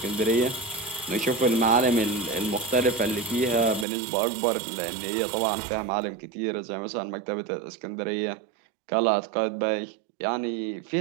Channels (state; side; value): drops out; left; at 3.9 s